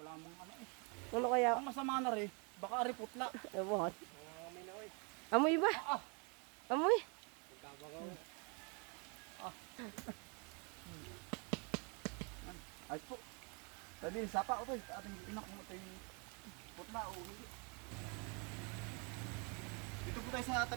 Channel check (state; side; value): quieter; left; 34.1 dB